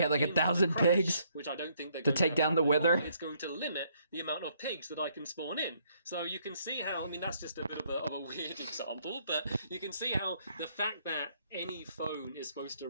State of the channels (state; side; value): inverted; both; correlation -0.69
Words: like 1,000 pigs, which I don't think they're to take down the Wither. It's going to limit the amount of pigs that I can spawn in. So you can see how, that's just a bit of a weird example, but you can see how the fact that any phone is supposed to